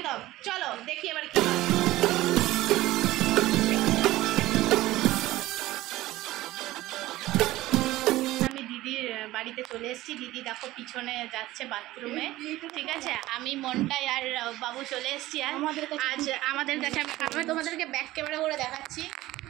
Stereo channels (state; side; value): quieter; left; 16.8 dB